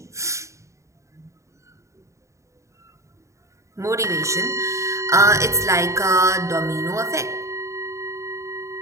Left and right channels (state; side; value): late; left; 0.14 ms